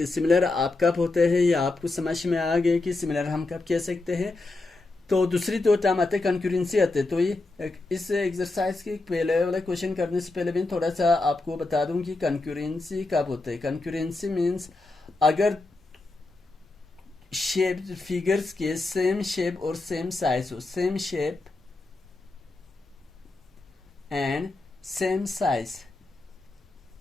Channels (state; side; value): quieter; right; 3.2 dB